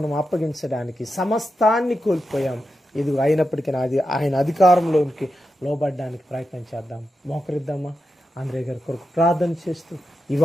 అప్పగించడానికి సమస్తాన్ని కోల్పోయాం. ఇది అయినప్పటికీ ఆయన అధికారంలోనికి లోబడ్డానికి ప్రయత్నం చేద్దాం. మోకరిద్దామా? ఆంధ్రే గారి కొరకు ప్రార్థన చేస్తూ ఈ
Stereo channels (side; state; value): both; normal; correlation 0.88